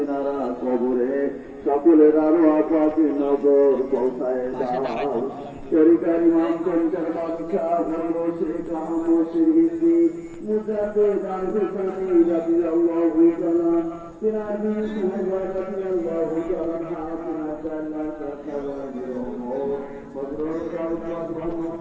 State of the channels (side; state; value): both; identical; correlation 1.00